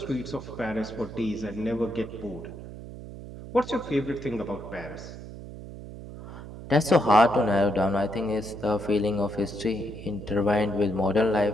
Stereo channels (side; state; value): right; noise; hum, 12 dB below the sound